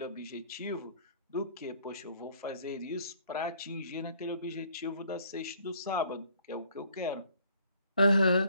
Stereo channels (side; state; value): both; inverted; correlation -0.61